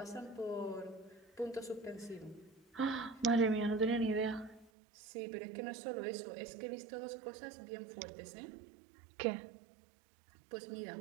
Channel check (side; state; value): left; drops out; at 4.7 s